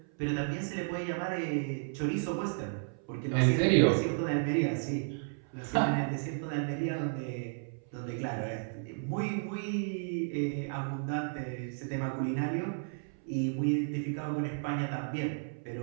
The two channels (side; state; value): left; silent; 56 dB below the other